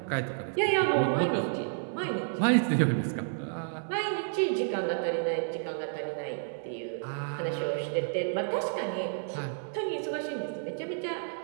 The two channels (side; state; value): left; silent; 57 dB below the other